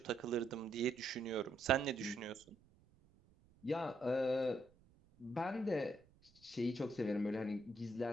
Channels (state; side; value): noise; right; rumble, 29 dB below the sound